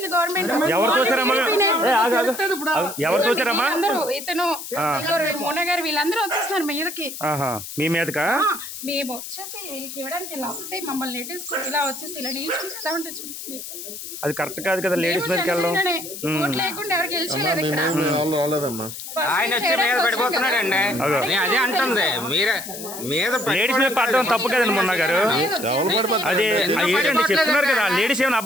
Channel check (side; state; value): left; noise; hiss, 10 dB below the sound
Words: గవర్నమెంట్. అందరూ ఇతను మోన గారు వీళ్ళందరూ వచ్చేస్తున్నారు మీదకి. మీ మీదకా మేము వచ్చేసి వీళ్ళకి ఇవ్వడానికి ఇలా వస్తే మమ్మల్ని నెట్టేసుకుని ఇలా వచ్చేసి ఇలా నిల్చుంటే ఎలా ఉంటుంది చెప్పండి. అది కరెక్ట్ కాదు కదా, లేడీస్ మీదకి వెళ్ళడం. ఓట్లు లేకుండా ఎవరు గెలిచేయలేదు ఇక్కడ. ఆయన వచ్చి మీద పడిపోతున్నాడండి. అదే అంటుంది మీరే మీద లేడీస్ మీద పడడం తప్పు కదండి మొన్న గారు. అదే ఏంటండి చెప్తున్నారు కదా, లేడీస్ ఏమైనా